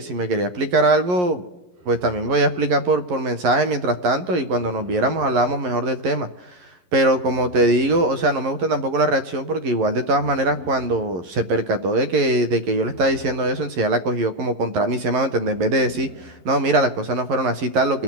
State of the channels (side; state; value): left; late; 11 ms